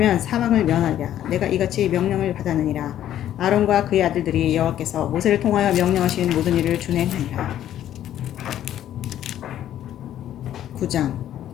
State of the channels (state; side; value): quieter; right; 11.5 dB